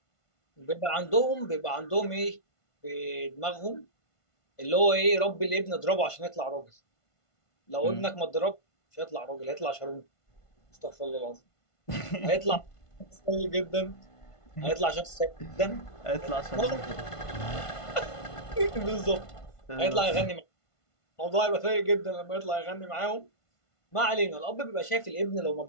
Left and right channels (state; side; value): late; right; 1.5 ms